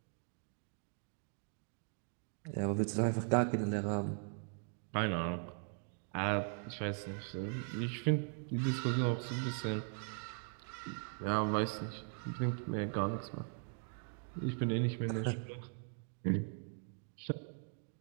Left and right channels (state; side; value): silent; left; 51 dB below the other